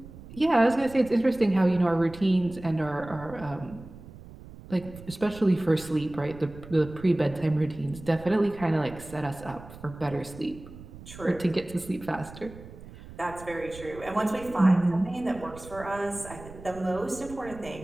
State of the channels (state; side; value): noise; right; rumble, 17 dB below the sound